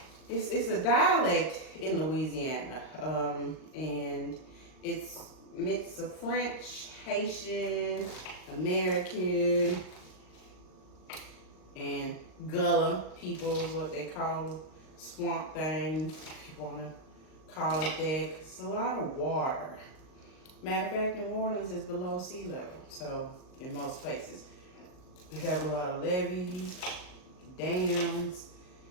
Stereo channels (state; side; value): late; right; 39 ms